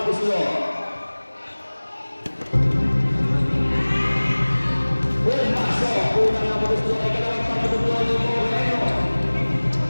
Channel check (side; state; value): both; inverted; correlation -1.00